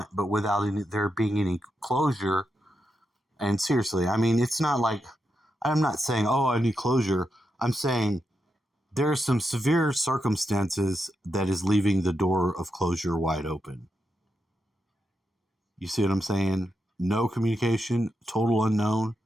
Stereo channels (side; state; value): both; normal; correlation 0.85